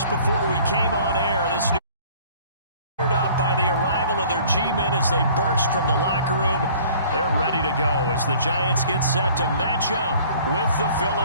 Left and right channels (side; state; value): both; inverted; correlation -0.52